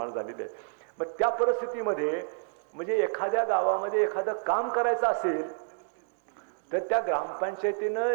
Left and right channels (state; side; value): silent; left; 58 dB below the other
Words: झालेली आहे. मग त्या परिस्थितीमध्ये म्हणजे एखाद्या गावामध्ये एखादं काम करायचं असेल तर त्या